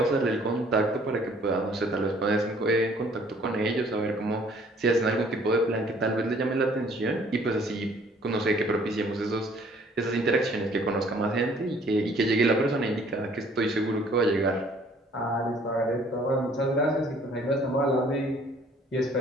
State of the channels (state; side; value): normal; both; correlation 0.58